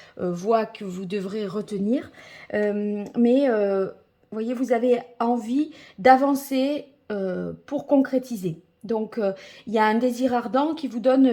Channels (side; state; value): both; identical; correlation 1.00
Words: voie que vous devrez retenir. Mais, voyez, vous avez envie d'avancer pour concrétiser. Donc, il y a un désir ardent qui vous